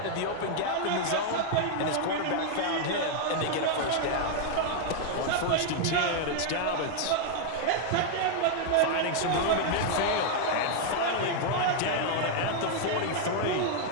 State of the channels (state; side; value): different; both; correlation 0.00